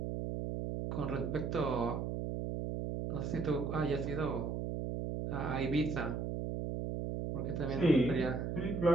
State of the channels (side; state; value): right; noise; hum, 2 dB below the sound